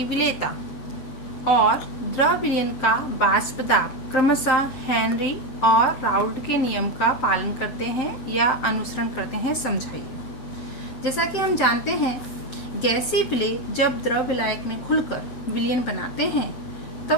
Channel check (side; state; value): right; late; 7.7 ms